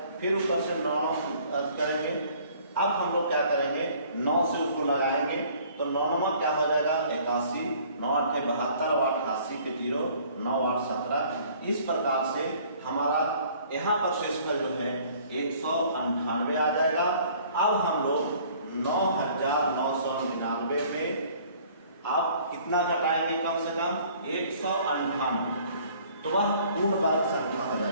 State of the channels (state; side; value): inverted; both; correlation -0.55